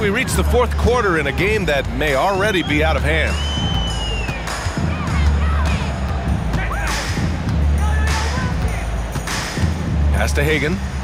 we reach the fourth quarter in a game that may already be out of hand. Pass to Hagan.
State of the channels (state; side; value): identical; both; correlation 1.00